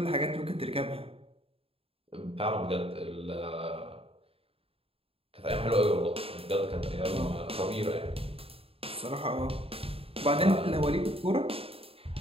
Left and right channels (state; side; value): late; left; 0.27 ms